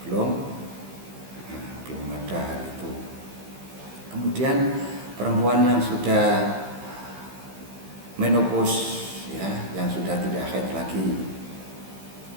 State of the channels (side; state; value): left; late; 15 ms